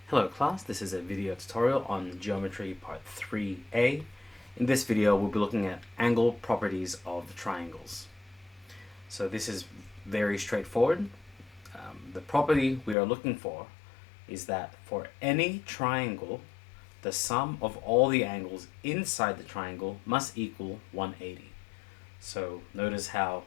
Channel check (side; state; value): right; drops out; at 13.0 s